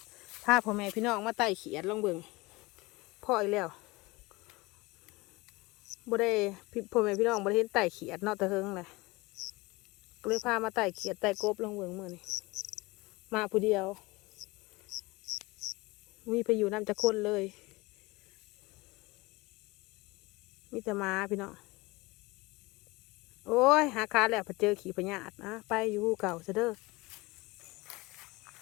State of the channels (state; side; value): quieter; right; 23.0 dB